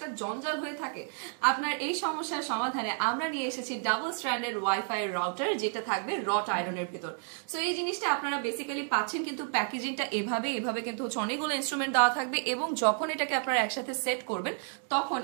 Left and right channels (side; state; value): left; silent; 57 dB below the other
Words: জঞ্জাল হয়ে থাকে? আপনার এই সমস্যার সমাধানে আমরা নিয়ে এসেছি ডাবল স্ট্র্যান্ডেড ওয়াইফাই রাউটার, যেটা থাকবে রট আয়রনের ভেতর। সো এই জিনিসটা আপনারা বেসিক্যালি পাচ্ছেন, কিন্তু প্যাকেজিংটা এভাবে কিন্তু হচ্ছে অনেকগুলো ইনস্ট্রুমেন্ট দেওয়া থাকবে এবং যখন এটাকে আপনারা একসাথে সেট করবেন তখন